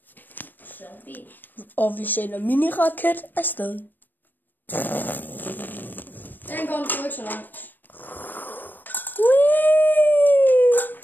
Zombie. Og vi sender mini-raket afsted. Den kommer sgu ikke så langt.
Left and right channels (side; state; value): right; late; 0.091 ms